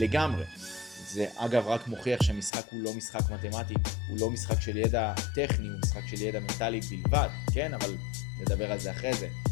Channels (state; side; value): drops out; right; at 2.5 s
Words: זה אגב רק מוכיח שהמשחק הוא לא משחק מתמטי, הוא לא משחק של ידע טכני, הוא משחק של ידע מנטלי בלבד, כן? אבל נדבר על זה אחרי זה.